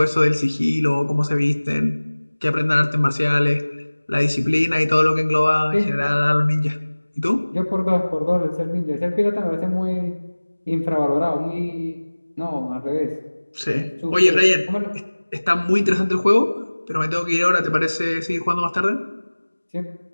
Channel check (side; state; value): both; inverted; correlation -1.00